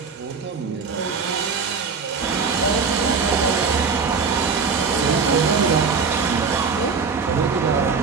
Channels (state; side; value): quieter; left; 5.2 dB